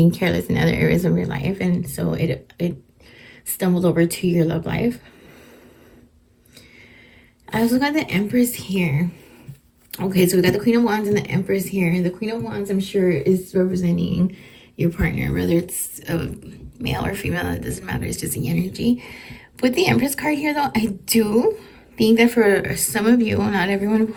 careless in other areas of your life, and so it stumbled over to your love life. I also got the Empress here. Okay, so we got the Queen of Wands and the Empress here. The Queen of Wands, I'm sure, is representing your partner, whether it's a male or female, it doesn't matter. It's just the energy. With the Empress card here, though, I do think that for some of you, not everyone, of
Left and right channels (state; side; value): identical; both; correlation 1.00